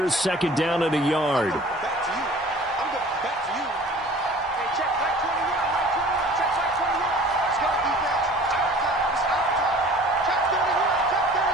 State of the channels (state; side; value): normal; both; correlation 0.46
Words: 2nd down and a yard.